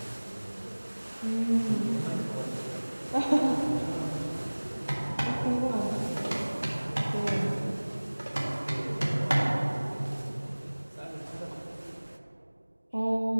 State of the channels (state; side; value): inverted; both; correlation -1.00